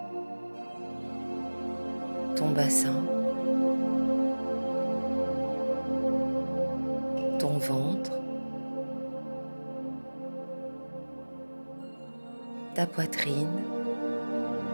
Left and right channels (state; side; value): inverted; both; correlation -1.00